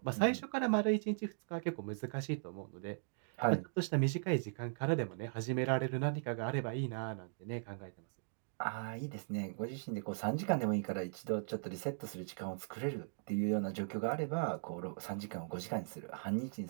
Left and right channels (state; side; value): silent; left; digital silence